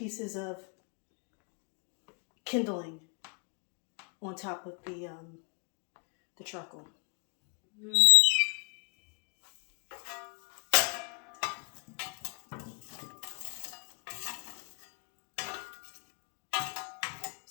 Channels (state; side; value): quieter; right; 37.9 dB